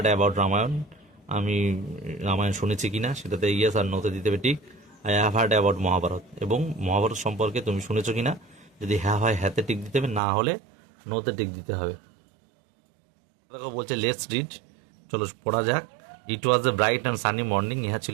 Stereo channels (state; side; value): drops out; left; at 10.2 s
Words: about Ramayana, আমি রামায়ণ শুনেছি কিনা, সেটাতে ইয়েস আর নোতে দিতে হবে tick. I have heard about Mahabharat, এবং মহাভারত সম্পর্কে তুমি শুনেছো কিনা, যদি হ্যাঁ হয় হ্যাঁতে টিক দিতে হবে, না হলে নোতে টিক দিতে হবে। দেখো বলছে লেটস রিড, চলো পড়া যাক। It was a bright and sunny morning, ইহা